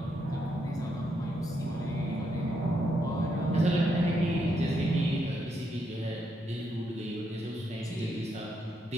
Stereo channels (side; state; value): both; normal; correlation 0.79